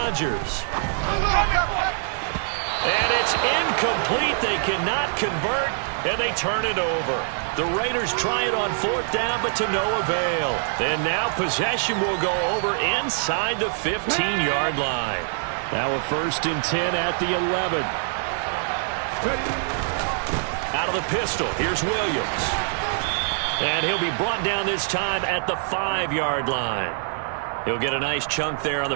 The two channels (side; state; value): left; silent; digital silence